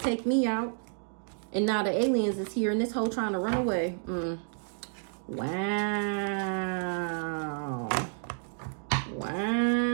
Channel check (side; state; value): left; silent; 58 dB below the other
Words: me out. And now the aliens is here and this whole trying to run away. Wow. Wow.